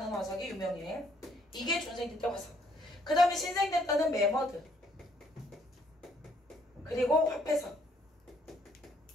화석이 유명해. 이게 중생대 때 화석. 그 다음에 신생대 때는 메머드, 그리고 화폐석.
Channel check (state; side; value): normal; both; correlation 0.67